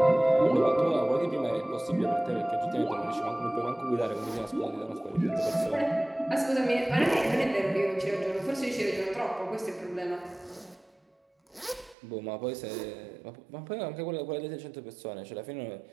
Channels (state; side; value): drops out; left; at 12.0 s